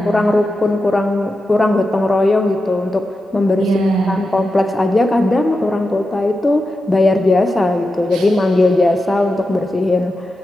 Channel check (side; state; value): both; normal; correlation 0.90